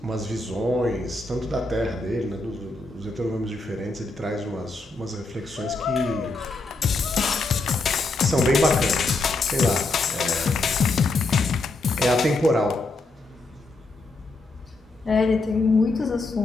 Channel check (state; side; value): quieter; right; 3.2 dB